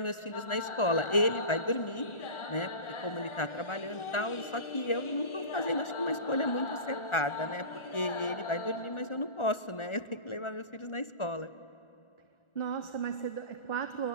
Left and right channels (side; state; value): right; late; 1.4 ms